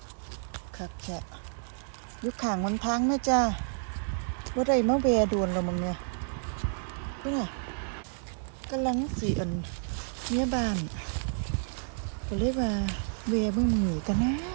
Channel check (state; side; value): silent; left; digital silence